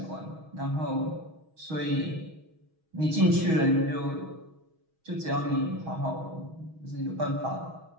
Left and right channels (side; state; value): left; late; 6.3 ms